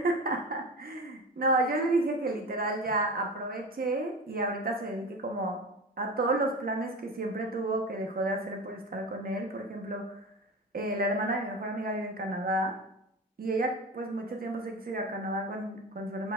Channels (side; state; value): both; normal; correlation 0.29